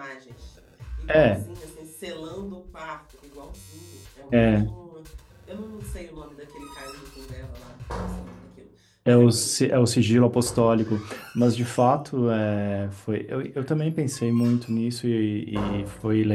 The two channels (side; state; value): both; identical; correlation 1.00